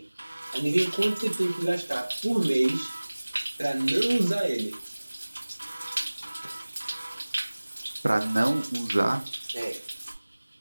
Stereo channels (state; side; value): inverted; both; correlation -1.00